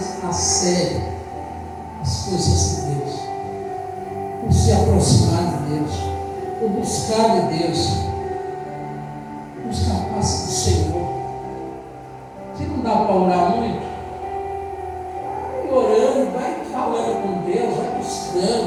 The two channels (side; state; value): both; identical; correlation 1.00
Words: a sério as coisas de Deus, por se aproximar de Deus, por buscar de Deus, buscar a face do Senhor. Se não dá para orar muito, vai orando, vai falando com Deus, vai